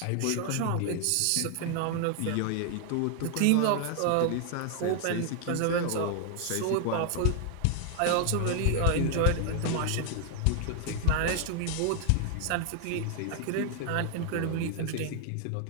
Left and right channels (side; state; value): both; different; correlation 0.00